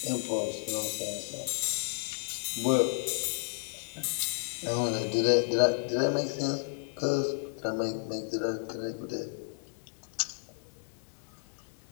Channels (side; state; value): right; silent; digital silence